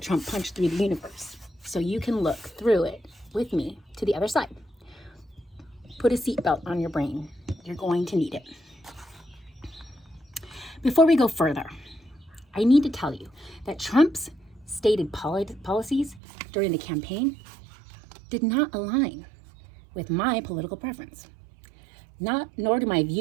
Trump punched through the universe, so you can look through it with me to the other side. Put a seatbelt on your brain. You're going to need it. Before we go further, I need to tell you that Trump's stated policies during the campaign did not align with my political preference. Nor do my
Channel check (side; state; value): left; drops out; at 16.2 s